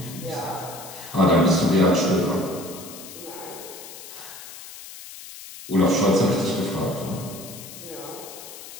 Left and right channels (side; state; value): left; noise; hiss, 14 dB below the sound